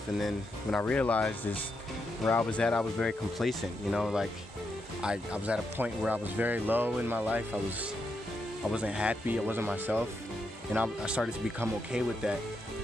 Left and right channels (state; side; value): normal; both; correlation 0.82